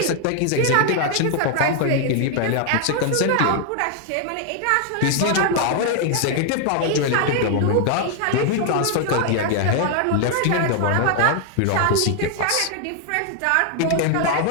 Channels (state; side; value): different; both; correlation 0.00